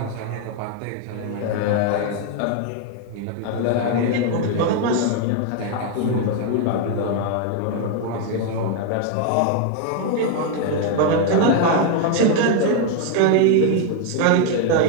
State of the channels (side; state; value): both; different; correlation 0.01